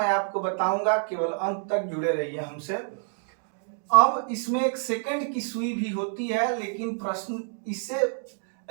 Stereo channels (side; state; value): left; silent; digital silence